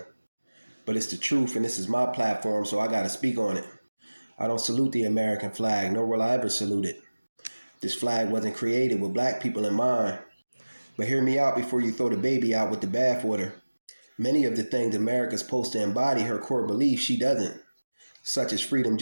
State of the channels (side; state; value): both; inverted; correlation -1.00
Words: But it's the truth, and this is my platform, so I got to speak on it. I don't salute the American flag, nor will I ever salute it. This flag wasn't created with black people in mind. But hear me out before you throw the baby out with the bathwater. Many of the things America's supposed to embody her core beliefs, she doesn't, such as freedom,